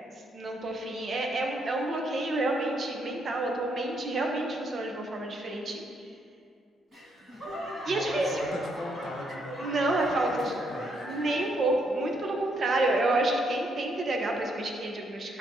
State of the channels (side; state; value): both; normal; correlation 0.74